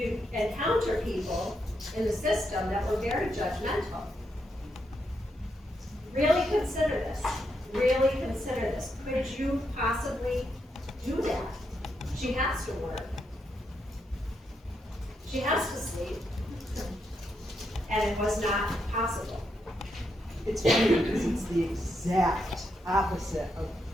encounter people in the system that were very judgmental. Really consider this, really consider this. Could you possibly do that? She has to work. She has to sleep. And it was not possible. It's funny because it's the exact opposite of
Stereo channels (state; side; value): normal; both; correlation 0.81